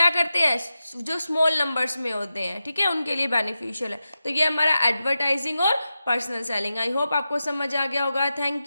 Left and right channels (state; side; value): inverted; both; correlation -0.91